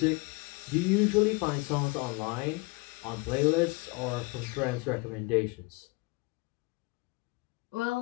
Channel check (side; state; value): right; quieter; 26.9 dB